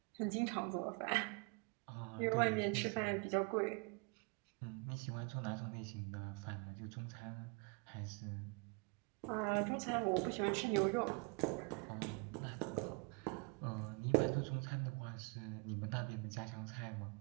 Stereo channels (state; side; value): quieter; left; 32.0 dB